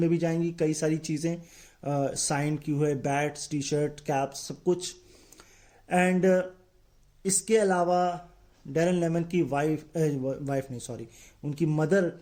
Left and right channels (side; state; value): both; identical; correlation 1.00